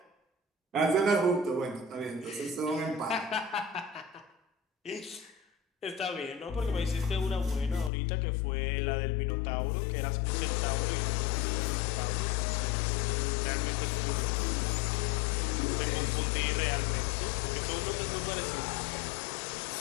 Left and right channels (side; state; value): right; drops out; at 7.9 s